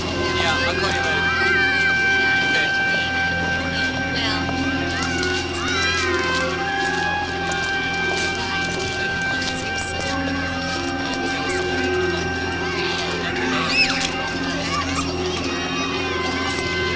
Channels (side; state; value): both; identical; correlation 1.00